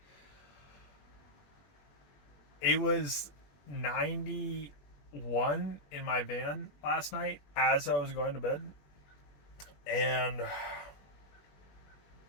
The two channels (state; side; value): late; right; 21 ms